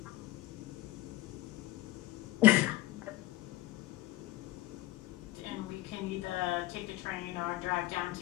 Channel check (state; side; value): quieter; right; 16.9 dB